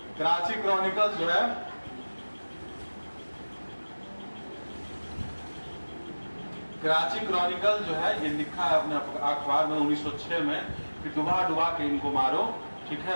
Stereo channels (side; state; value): both; inverted; correlation -1.00